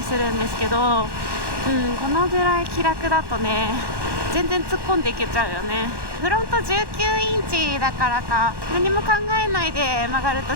するんですけど、このぐらい気楽だとね全然突っ込んでいけちゃうよね。フロント19インチだからか、何も考えないで曲がると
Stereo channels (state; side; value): late; left; 1.1 ms